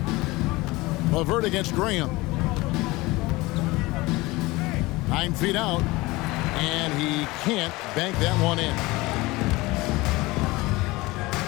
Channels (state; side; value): quieter; right; 21.4 dB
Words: LeVert against Graham. 9 feet out, and he can't bank that one in.